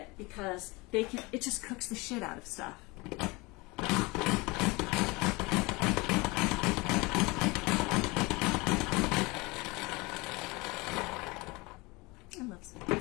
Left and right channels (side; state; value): right; quieter; 24.5 dB